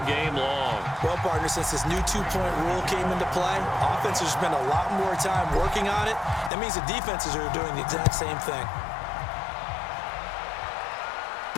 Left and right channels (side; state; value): right; drops out; at 6.5 s